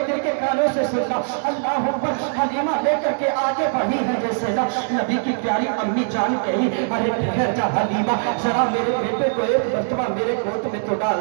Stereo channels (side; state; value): left; silent; 61 dB below the other